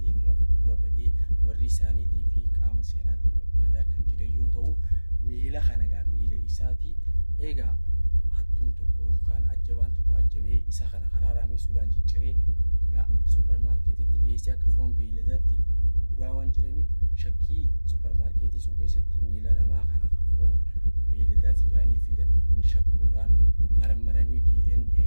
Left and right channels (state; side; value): inverted; both; correlation -1.00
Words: fi 4 dura badee warri isaaniitii fi qaama seeraatiin barbaadaa kan jira yoo ta'u miila kana gaa miila isaati egaa hattuun tokko yookaan ajjabaan tokko ajjabee isa kana hararamee suudhaan cicciree yaa supermarketitti dhiyeessee akka foon beeyladaatti gurguraa waan jiraniif shakkii supermarketii sun keessatti miila namaa kana kan foon beeyladaati jedhanii fidan shakkuudhaan marmaranii DNA